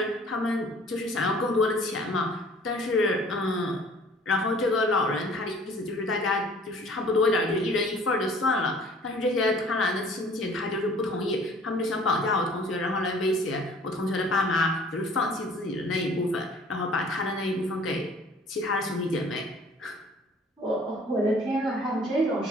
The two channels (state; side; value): normal; both; correlation 0.52